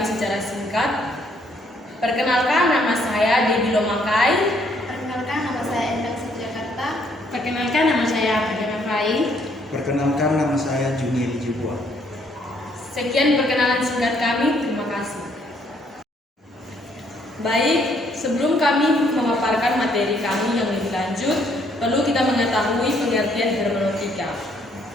secara singkat. Perkenalkan, nama saya Debbie Lomakai. Perkenalkan, nama saya Endang Jakarta. Perkenalkan, nama saya Fadina Fai. Perkenalkan, nama saya Juni Lijibua. Sekian perkenalan singkat kami, terima kasih. Baik, sebelum kami memaparkan materi kami yang lebih lanjut, perlu kita mengetahui pengertian hermeneutika.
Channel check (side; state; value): both; normal; correlation 0.68